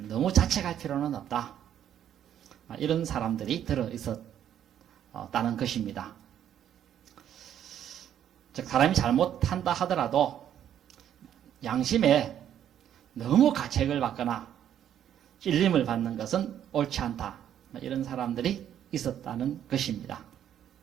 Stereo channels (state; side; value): quieter; left; 10.2 dB